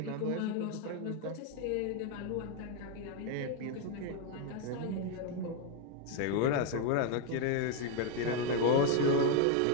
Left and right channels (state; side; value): different; both; correlation 0.00